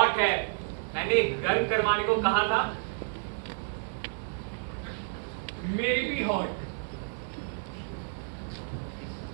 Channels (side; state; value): left; silent; digital silence